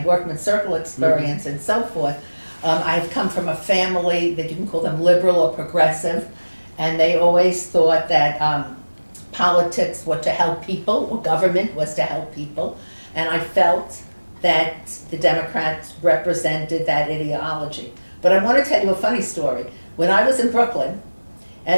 workman's circle experience and so forth, I've come from a family that you can call them liberal or progressive, and they always thought that politics were to help people, or government was to help people, and I felt that the Democrats represented that ideology. But I want to tell you a funny story. When I was in Brooklyn,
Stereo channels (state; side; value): inverted; both; correlation -1.00